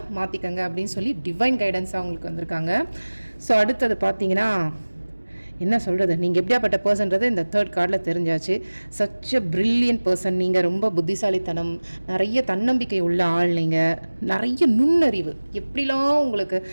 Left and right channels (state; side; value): inverted; both; correlation -1.00